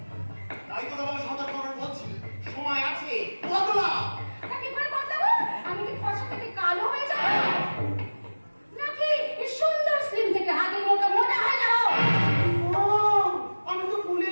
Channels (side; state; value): both; inverted; correlation -1.00